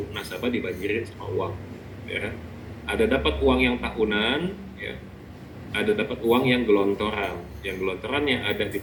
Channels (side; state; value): both; identical; correlation 1.00